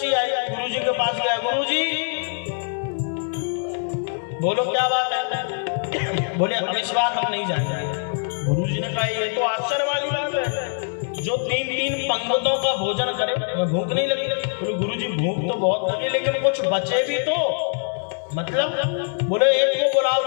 आई, गुरु जी के पास गया। गुरु जी बोलो क्या बात है? बोले अब इस बार हम नहीं जाएंगे। गुरु जी ने कहा ये तो आश्चर्य वाली बात है, जो तीन पंक्तों का भोजन करे भूख नहीं लगी। बोले गुरु जी भूख तो बहुत लगी, लेकिन कुछ बचे भी तो, मतलब बोले एक को बुलाओ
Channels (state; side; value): silent; right; 60 dB below the other